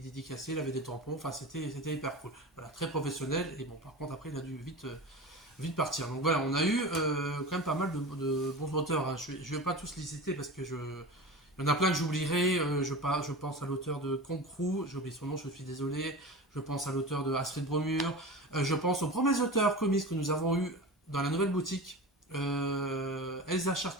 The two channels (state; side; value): normal; both; correlation 0.30